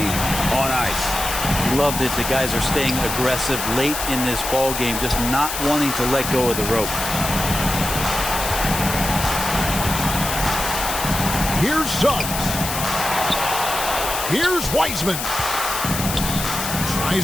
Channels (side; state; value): left; noise; hiss, 4 dB below the sound